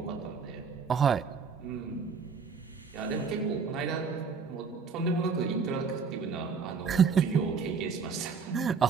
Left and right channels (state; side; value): quieter; left; 5.5 dB